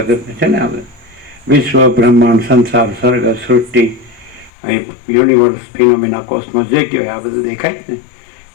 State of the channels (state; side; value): drops out; right; at 4.5 s